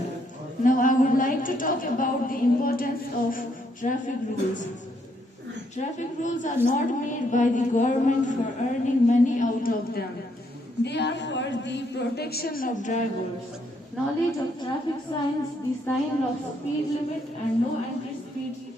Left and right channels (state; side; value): normal; both; correlation 0.73